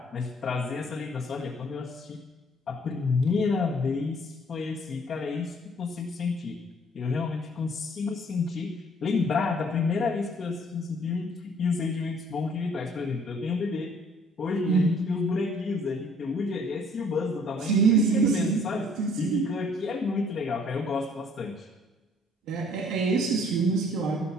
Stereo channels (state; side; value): normal; both; correlation 0.59